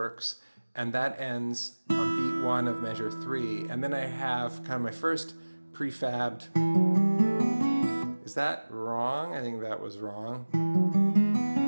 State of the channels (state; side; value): inverted; both; correlation -1.00